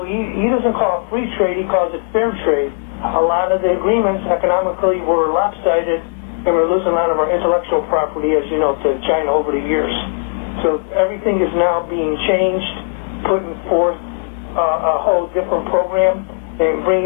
he doesn't call it free trade, he calls it fair trade. A lot of the agreements economically were lopsided, and we're losing a lot of our intellectual property, as you know, to China over the years. So everything is now being changed, putting forth a whole different program and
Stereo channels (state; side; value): silent; right; digital silence